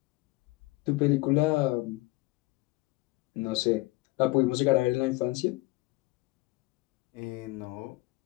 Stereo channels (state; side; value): quieter; right; 21.3 dB